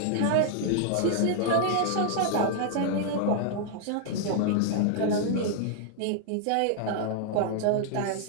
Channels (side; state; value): both; different; correlation -0.01